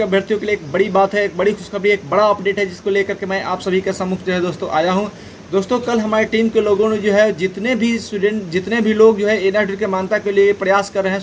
अभ्यर्थियों के लिए एक बड़ी बात है, एक बड़ी खुशखबरी, एक बड़ा अपडेट है जिसको लेकर के मैं आप सभी के सम्मुख जो है दोस्तों आया हूं। दोस्तों, कल हमारी टीम के लोगों ने जो है जितने भी लोग जो है एनआर अपडेट के मान्यता के लिए प्रयास कर रहे हैं,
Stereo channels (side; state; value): both; identical; correlation 1.00